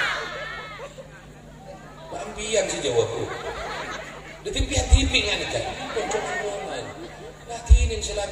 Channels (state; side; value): identical; both; correlation 1.00